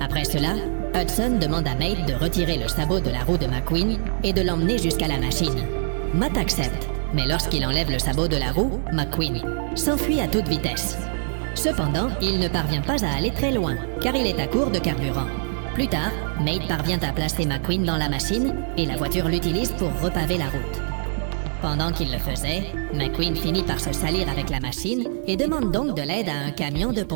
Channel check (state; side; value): silent; left; 63 dB below the other